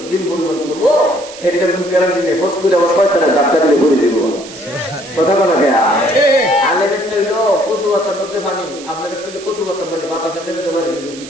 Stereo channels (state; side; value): noise; right; hiss, 16 dB below the sound